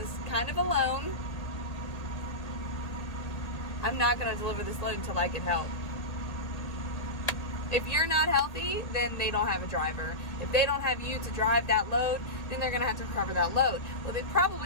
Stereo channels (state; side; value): late; right; 1.8 ms